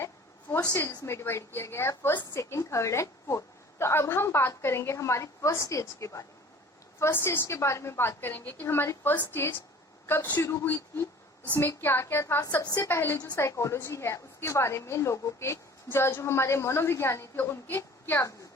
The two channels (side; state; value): both; normal; correlation 0.46